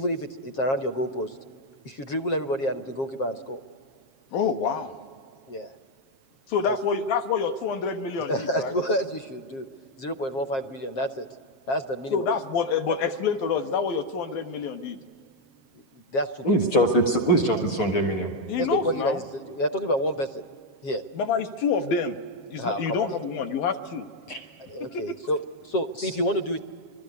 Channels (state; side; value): late; right; 7.5 ms